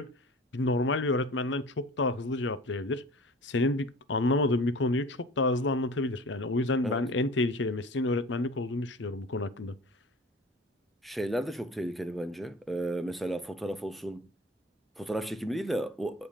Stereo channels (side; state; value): both; normal; correlation 0.42